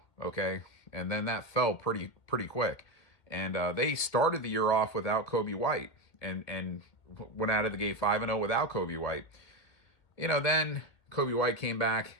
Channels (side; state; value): right; late; 1.8 ms